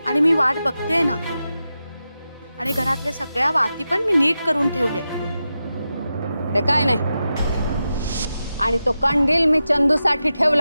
आणि मी वाट बघते ना. आणि घरातल्या सगळ्या वाती पण मी नीट करून ठेवले. ते काय नाही. आणि तो कंदील मी चंदूसाठी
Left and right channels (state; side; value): inverted; both; correlation -0.91